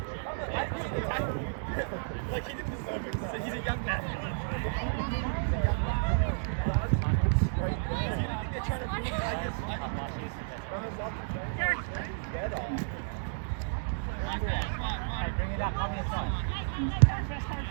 He's a young man. Bring it up, on your side.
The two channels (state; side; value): silent; left; 57 dB below the other